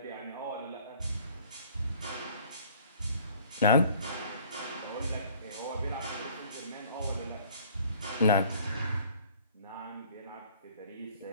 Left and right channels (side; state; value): both; inverted; correlation -0.54